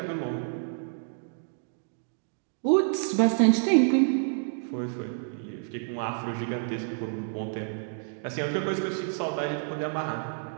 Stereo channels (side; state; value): left; silent; digital silence